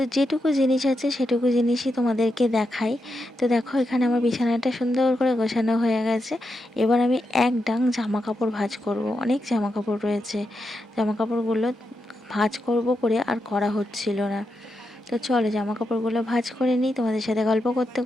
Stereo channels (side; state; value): both; normal; correlation 0.85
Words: যেটুকু জিনিস আছে সেটুকু জিনিসই তোমাদেরকে দেখাই। তো দেখো এখানে আমার বিছানাটা সুন্দর করে গোছানো হয়ে গেছে। এবার আমি এক ডাং জামা কাপড় ভাঁজ করব। অনেক জামা কাপড় রয়েছে, জামা কাপড়গুলো ভাঁজ করব করে আর করা হচ্ছিল না। তো চলো জামা কাপড়গুলো ভাঁজ করে নিই তোমাদের সাথে গল্প করতে